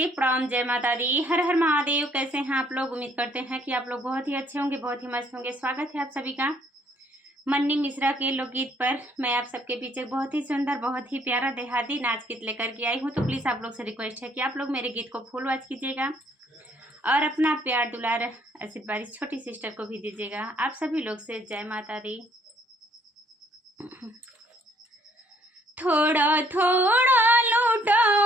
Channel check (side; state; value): both; normal; correlation 0.64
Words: प्रणाम, जय माता दी, हर हर महादेव। कैसे हैं आप लोग? उम्मीद करते हैं कि आप लोग बहुत ही अच्छे होंगे, बहुत ही मस्त होंगे। स्वागत है आप सभी का मन्नी मिश्रा के लोकगीत पर। मैं आप सबके पीछे बहुत ही सुंदर, बहुत ही प्यारा देहाती नाच गीत लेकर के आई हूँ। तो प्लीज़ आप लोग से रिक्वेस्ट है कि आप लोग मेरे गीत को फुल वॉच कीजिएगा और अपना प्यार दुलार आशीर्वाद इस छोटी सिस्टर को भी दीजिएगा। आप सभी लोग से जय माता दी। थोड़ा थोड़ा